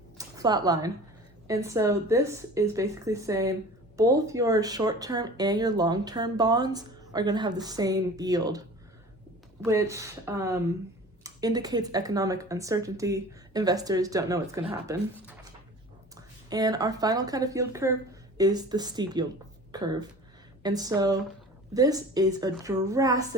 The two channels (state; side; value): normal; both; correlation 0.41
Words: flat line. And so this is basically saying both your short-term and your long-term bonds are going to have the same yield, which indicates economic uncertainty. Investors don't know what's going to happen. And our final kind of yield curve is the steep yield curve. And so this is a